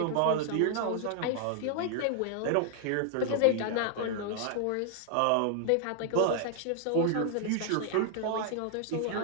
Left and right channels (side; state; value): both; different; correlation 0.00